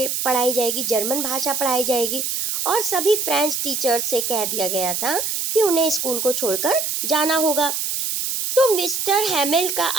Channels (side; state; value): right; noise; hiss, 1 dB below the sound